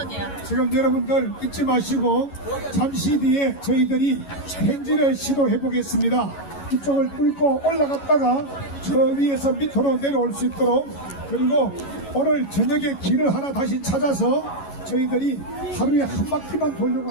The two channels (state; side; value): late; right; 11 ms